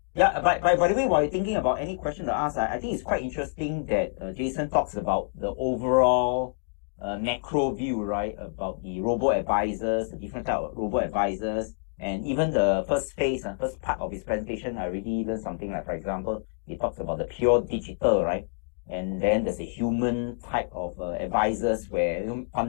Yeah, by the way, while you're thinking about any question to ask, I think it's quite interesting that Jason talks about the overall a macro view, right, about the robo-advisors, the different type of robo-advisors, and even the first phase, first part of his presentation, I really learned something. Like, for example, he talks about the pure digital, right, and then there's a human type of advisors where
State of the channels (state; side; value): silent; right; digital silence